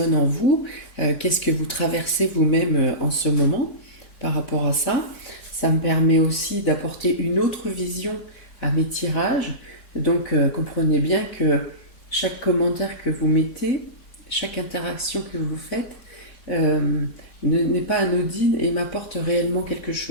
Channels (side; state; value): right; late; 4.3 ms